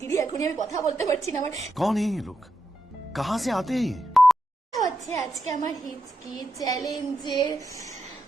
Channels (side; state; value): both; normal; correlation 0.85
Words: এখনই আমি কথা বলতে পারছি না। আমার कौन है ये लोग, कहाँ से आते हैं ये? হচ্ছে আজকে আমার হিচকি চ্যালেঞ্জের